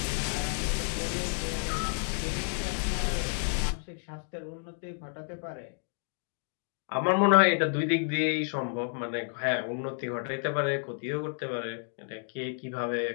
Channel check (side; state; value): right; silent; 57 dB below the other